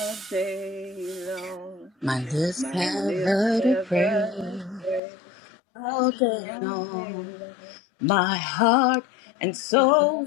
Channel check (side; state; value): right; drops out; at 5.0 s